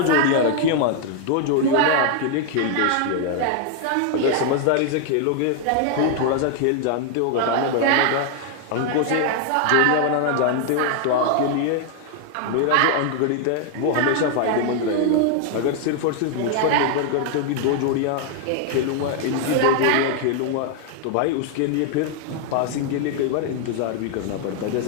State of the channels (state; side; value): different; both; correlation 0.00